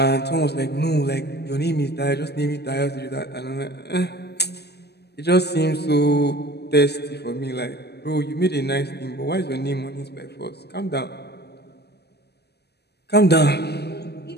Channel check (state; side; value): late; right; 0.48 ms